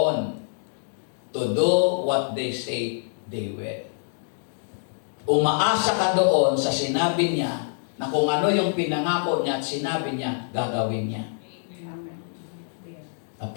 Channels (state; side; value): silent; right; digital silence